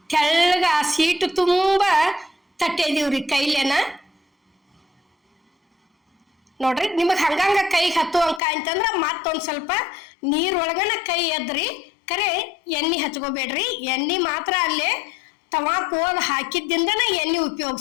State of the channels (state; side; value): drops out; right; at 8.4 s